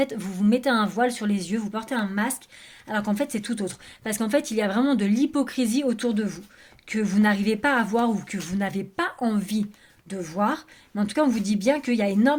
vous vous mettez un voile sur les yeux, vous portez un masque, alors qu'en fait, c'est tout autre. Parce qu'en fait, il y a vraiment de l'hypocrisie autour de vous, que vous n'arrivez pas à voir ou que vous n'avez pas envie de voir. Mais en tout cas, on vous dit bien qu'il y a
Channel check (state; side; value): identical; both; correlation 1.00